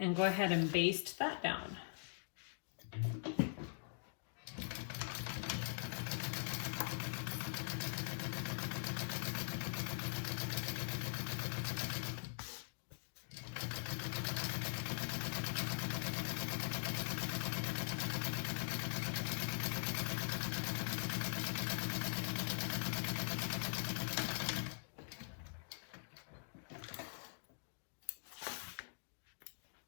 go ahead and baste that down.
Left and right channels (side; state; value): right; silent; digital silence